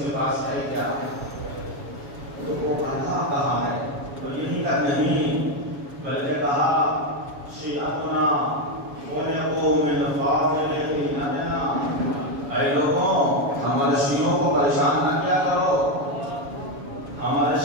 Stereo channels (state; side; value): late; left; 7.2 ms